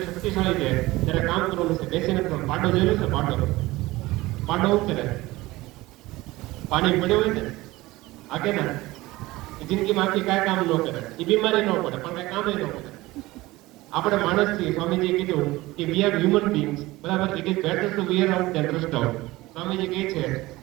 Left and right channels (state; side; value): quieter; left; 19.3 dB